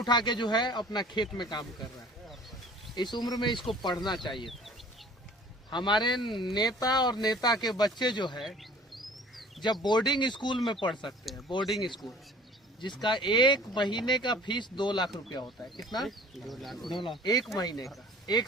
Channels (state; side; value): normal; both; correlation 0.48